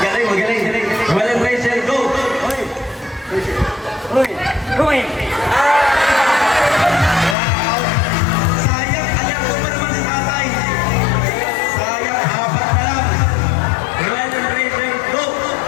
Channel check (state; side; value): drops out; right; at 7.4 s